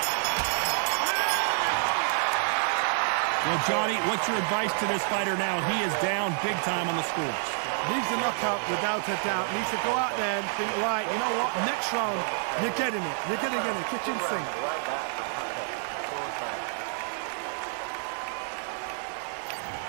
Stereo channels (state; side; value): silent; left; 59 dB below the other